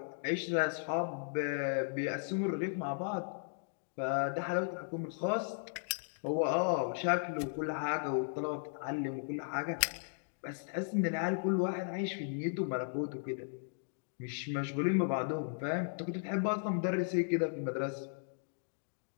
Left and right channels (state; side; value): silent; right; digital silence